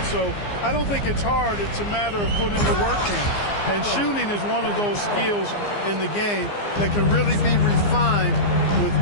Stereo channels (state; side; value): late; right; 15 ms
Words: So I don't think it's hard. It's a matter of putting the work in. And shooting is one of those skills in the game that can really be refined with